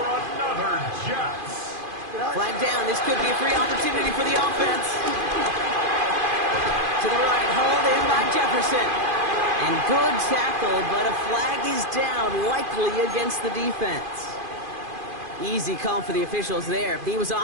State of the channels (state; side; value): late; left; 2.5 ms